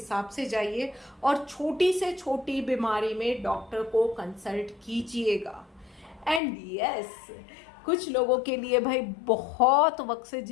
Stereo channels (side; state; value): right; drops out; at 6.4 s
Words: से जाइए, और छोटी से छोटी बीमारी में डॉक्टर को कंसल्ट कीजिएगा। एंड यस, कुछ लोगों के लिए भाई बहुत वक्त से